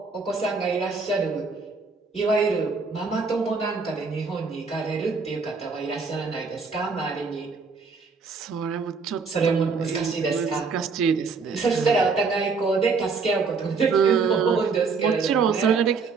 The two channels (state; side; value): quieter; left; 4.8 dB